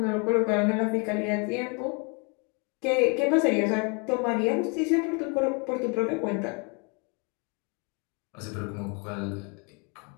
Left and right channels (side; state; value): right; quieter; 34.0 dB